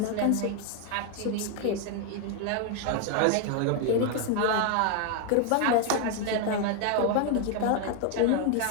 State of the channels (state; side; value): different; both; correlation 0.01